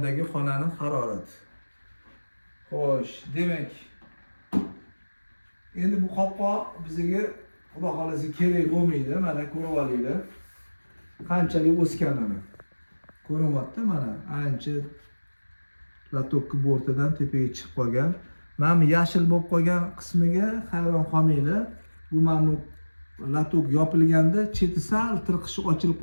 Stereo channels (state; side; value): inverted; both; correlation -1.00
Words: xonaning harorati. Xo'sh, demak, endi bu qopqoq bizga xudo xolisa kerak bo'lmaydi. Mana ko'rib olinglar. Qanchalik o'sganini. Ko'ryapti mana, ancha latokni bortidan tepaga chiqib qolgan. Mana bu yashil bo'lib qolgan qismiga hayron qolmanglar. Bu mana latok yopilganda cheti sal tirqishi ochilib